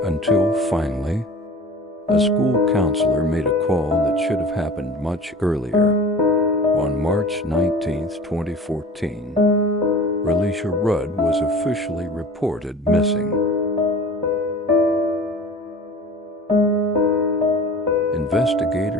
until finally, a school counselor made a call that should have happened much earlier. On March 19, 2014, Relisha Rudd was officially reported missing.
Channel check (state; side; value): normal; both; correlation 0.41